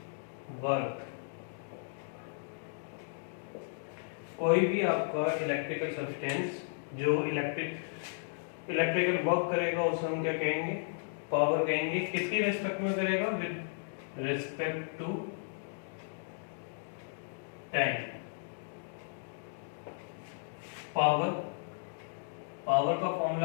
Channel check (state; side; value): silent; right; digital silence